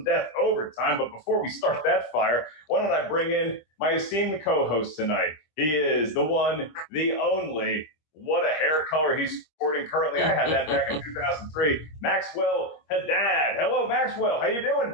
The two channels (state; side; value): late; right; 25 ms